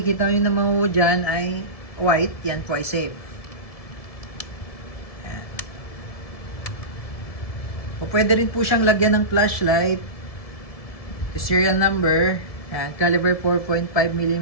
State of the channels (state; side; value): late; right; 1.7 ms